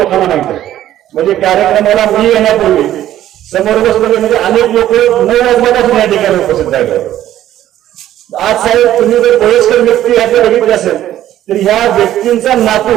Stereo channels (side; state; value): left; quieter; 12.6 dB